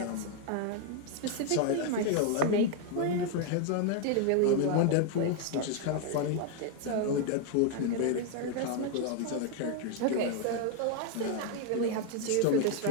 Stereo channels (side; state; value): both; different; correlation 0.01